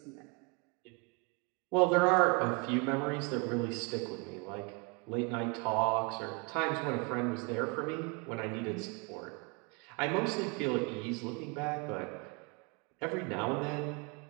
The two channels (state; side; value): quieter; left; 32.0 dB